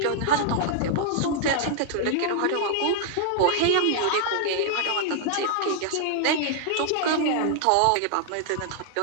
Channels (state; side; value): different; both; correlation -0.01